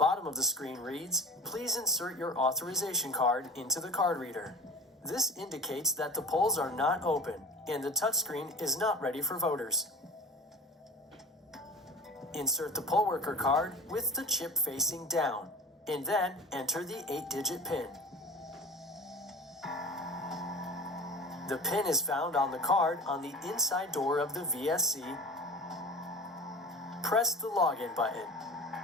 of the screen reads, "Please insert your authorization card into the card reader." This indicates that the polls are not open and the touchscreen is not ready for voters. Insert the poll worker card with the chip facing down, and then enter the 8-digit PIN. The PIN is found on the card on the inside door of the VSC. Press the login button.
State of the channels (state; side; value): normal; both; correlation 0.37